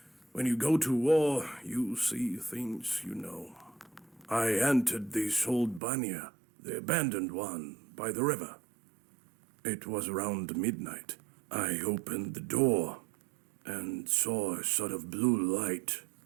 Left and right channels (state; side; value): drops out; left; at 5.8 s